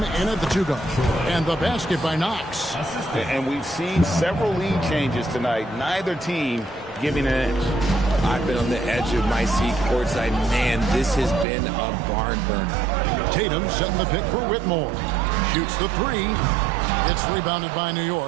in at the 2-go. And the basket by Knox. And we've seen several lead changes tonight. Neither team giving an edge. I've been on the edge of my seat courtside. Man, this has been a barn burner. Tatum setting the pick for Whitmore. Shoots the 3. It's rebounded by New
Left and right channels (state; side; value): drops out; left; at 11.5 s